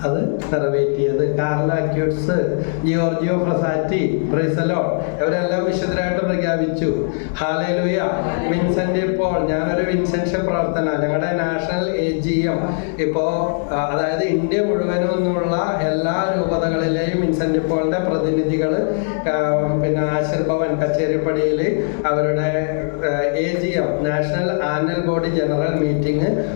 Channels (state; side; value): silent; right; digital silence